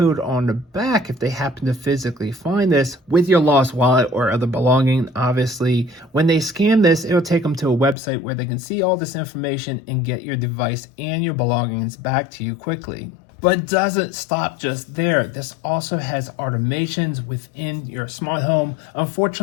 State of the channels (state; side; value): drops out; right; at 8.0 s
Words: on the back, if they happen to physically find this with your lost wallet or other belonging, obviously, when they scan this, it'll take them to a website where they can see all this information and get your device and your belongings back to you quickly. But it doesn't stop just there. This also has automations within your smart home.